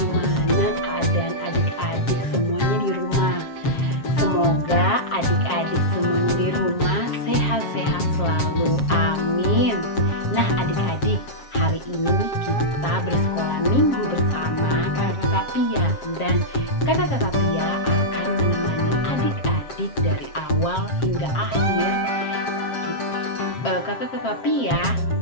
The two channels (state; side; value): late; right; 7.5 ms